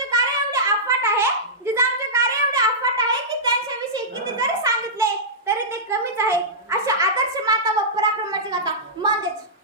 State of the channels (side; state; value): both; normal; correlation -0.14